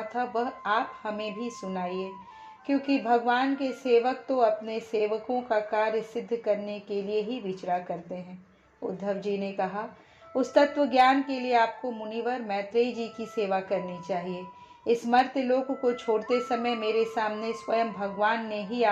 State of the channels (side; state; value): both; identical; correlation 1.00